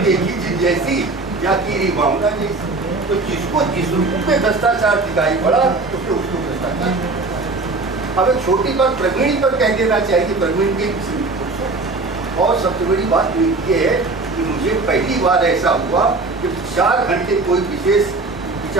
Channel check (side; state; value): left; quieter; 3.5 dB